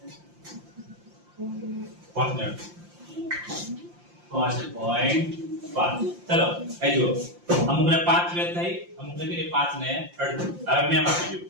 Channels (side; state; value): left; late; 5.7 ms